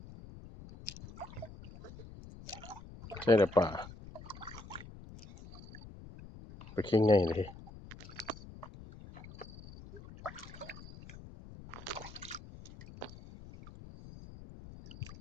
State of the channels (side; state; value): left; noise; rumble, 15 dB below the sound